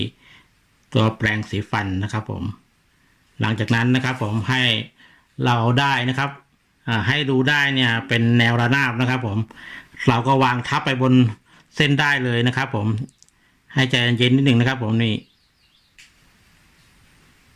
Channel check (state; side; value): identical; both; correlation 1.00